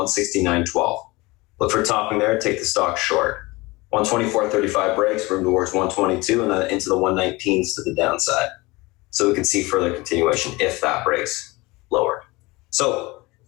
Look for topping there, take the stock short. 124.35 breaks, room towards 122, and then into the 119s to the downside. So we can see further continuation if that breaks lower. So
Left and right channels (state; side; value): quieter; right; 22.8 dB